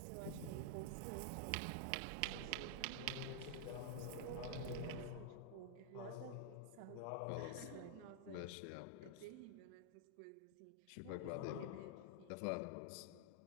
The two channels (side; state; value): both; different; correlation -0.01